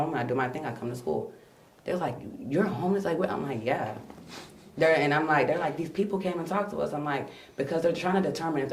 I do my thing, I come to school. They're like, you're homeless? Like, what? I'm like, yeah. They're like, these people came and talked to us. I'm like, because they're trying to determine if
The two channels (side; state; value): both; identical; correlation 1.00